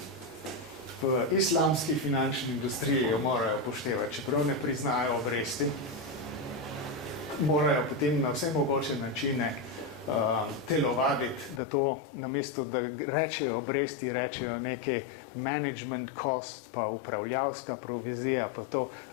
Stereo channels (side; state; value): right; drops out; at 11.6 s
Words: v islamski finančni industriji jo morajo upoštevati, čeprav ne priznajo obresti. Morajo potem na vse mogoče načine telovaditi, da to namesto, da rečejo obresti, rečejo neke management cost, pa upravljavska provizija, pa to,